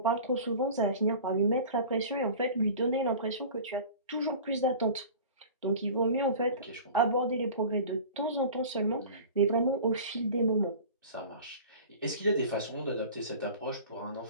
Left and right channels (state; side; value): inverted; both; correlation -0.39